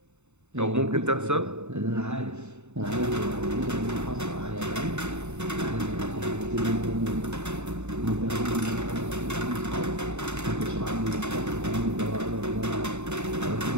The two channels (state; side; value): late; left; 0.82 ms